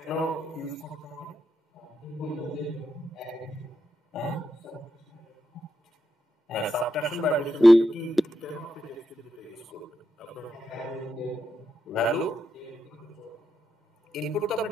ইউজ করতে হবে? হ্যাঁ, সাবট্রাকশন বা অ্যাডিশন কি কেন আপনি টেক্সট ফিল্ড ইউজ করবেন? আপনার ভ্যালু ইনপুট তো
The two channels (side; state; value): both; normal; correlation 0.84